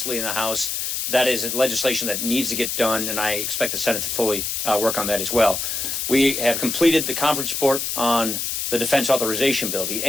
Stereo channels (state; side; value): noise; left; hiss, 2 dB below the sound